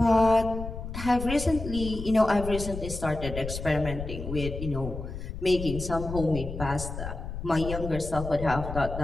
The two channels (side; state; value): left; noise; rumble, 7 dB below the sound